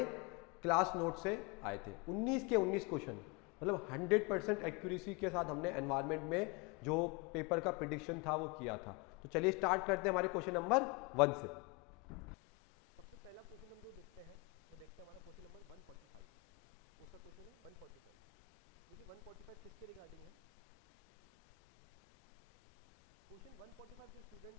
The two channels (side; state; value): right; quieter; 24.5 dB